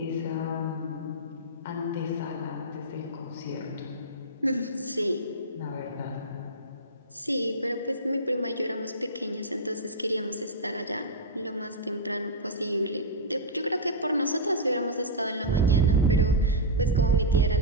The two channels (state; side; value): normal; both; correlation -0.12